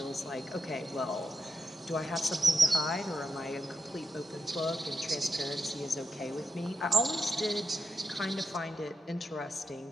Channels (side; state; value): both; normal; correlation 0.85